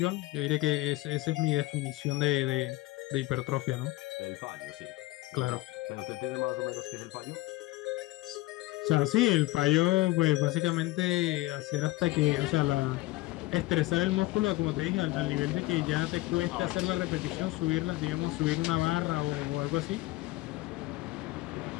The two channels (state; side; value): quieter; right; 19.3 dB